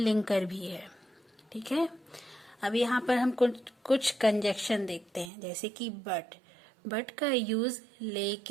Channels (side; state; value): left; drops out; at 5.3 s